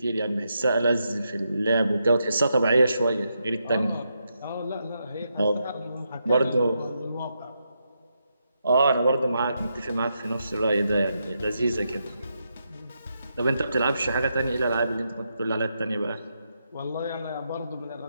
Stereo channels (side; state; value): both; inverted; correlation -0.82